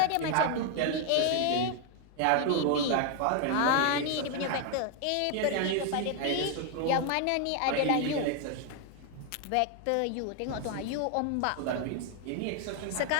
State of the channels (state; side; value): different; both; correlation 0.00